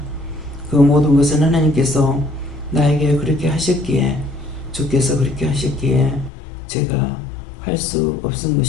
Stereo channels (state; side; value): drops out; right; at 6.3 s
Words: 그 모든 것은 하나님께서 나에게 그렇게 하셨기에 주께서 그렇게 하셨기에 제가 할 수 없은